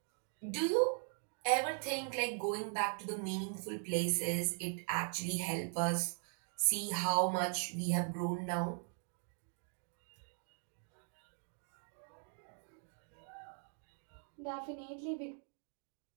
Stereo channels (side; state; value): left; silent; 51 dB below the other